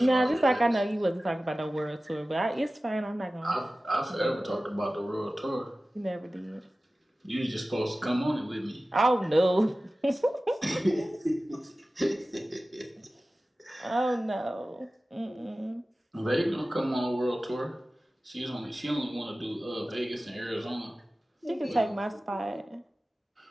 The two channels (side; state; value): both; normal; correlation 0.96